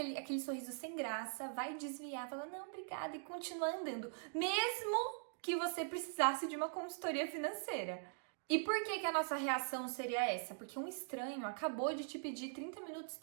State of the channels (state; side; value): silent; left; digital silence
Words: sorriso sem graça, vai desviar, falar, não, obrigada, e continuar andando, mesmo que você precisasse de uma consultoria financeira. E por que a nossa reação seria essa? Porque um estranho acabou de te pedir 30 minutos